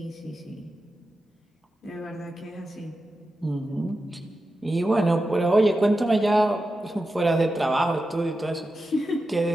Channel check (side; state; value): both; normal; correlation 0.91